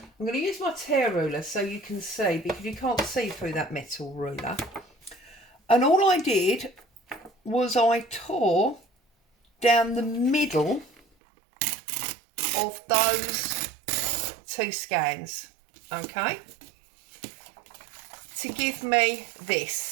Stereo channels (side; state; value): left; drops out; at 11.0 s